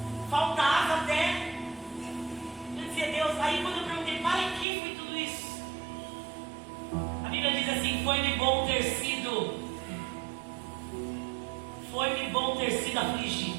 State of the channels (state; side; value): drops out; left; at 4.7 s